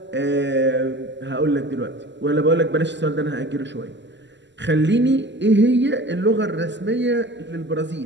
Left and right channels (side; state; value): left; late; 0.53 ms